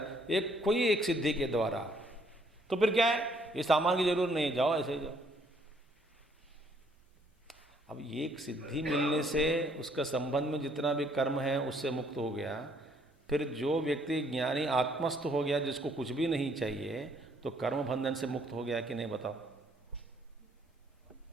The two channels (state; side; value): normal; both; correlation 0.66